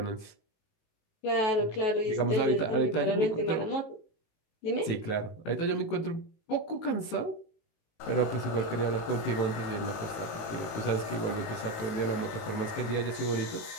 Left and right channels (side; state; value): right; late; 19 ms